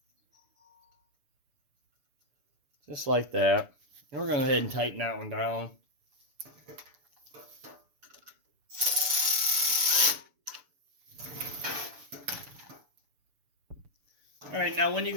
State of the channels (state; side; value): late; left; 6.9 ms